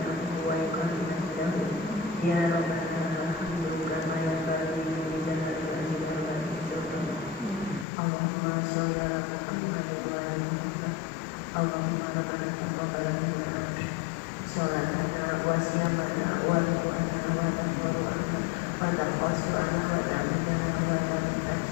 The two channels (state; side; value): drops out; right; at 7.9 s